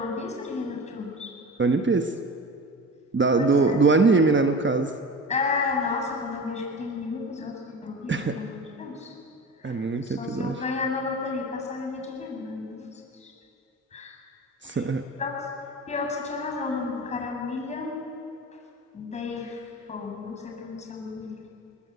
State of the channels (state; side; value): normal; both; correlation 0.33